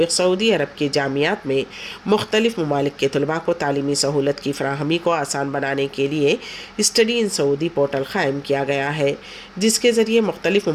सऊदी अरब के जामियात में मुख्तलिफ़ ममालिक के तलबा को तालीमी सहूलत की फ़राहमी को आसान बनाने के लिए स्टडी इन सऊदी पोर्टल क़ायम किया गया है, जिसके ज़रिए मुख्तलिफ़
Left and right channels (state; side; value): identical; both; correlation 1.00